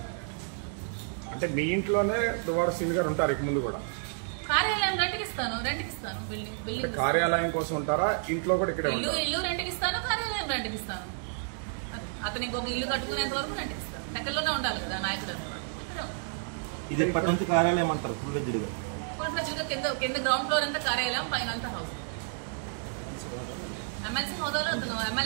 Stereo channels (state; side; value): silent; left; digital silence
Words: అంటే మీ ఇంట్లోనే దువ్వాడ శ్రీని గారు ఉంటారు ఇక ముందు కూడా? కార్యాలయం రెంట్కి ఇస్తాను. బిల్డింగ్ కార్యాలయం కోసం ఉంటారా? ఇంట్లో కూడా ఇక్కడే ఇల్లు రెంట్కి ఇస్తాను, కార్యాలయం రెంట్కి ఇస్తాను. అతను ఇంకొక ఇల్లు కట్టుకునేంత వరకు రెంట్కి ఇస్తాను. దగ్గరలోనే ఉండాలి కదా నాయకుడు. ఇది ఎప్పటి నుంచి కార్యాలయం అంటారు? ఫుల్ ఫ్లెడ్జ్డ్గా కింద గ్రౌండ్ ఫ్లోర్ అంతా కార్యాలయం, పైన అంతా హౌస్. ఎమ్మెల్సీ